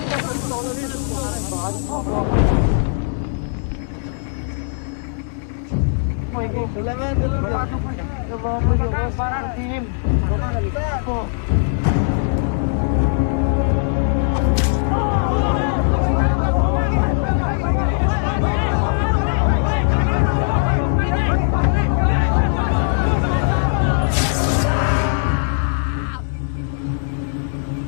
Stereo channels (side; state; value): right; silent; digital silence